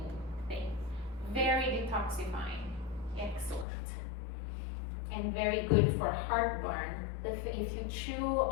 thing. Very detoxifying, excellent. And very good for heartburn. If you chew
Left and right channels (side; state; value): right; drops out; at 3.7 s